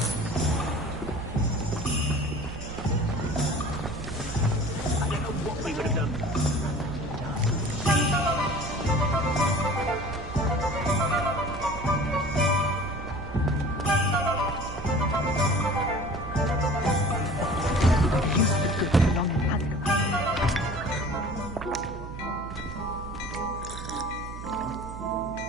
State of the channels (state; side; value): noise; right; hum, 11 dB below the sound